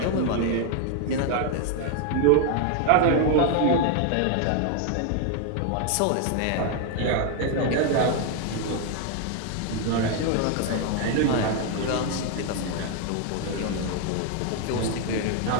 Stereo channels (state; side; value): different; both; correlation 0.01